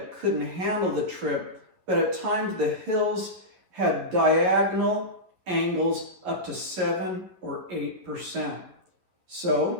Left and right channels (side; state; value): left; late; 11 ms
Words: couldn't handle the trip, but at times the hills had diagonal angles up to 7 or 8%.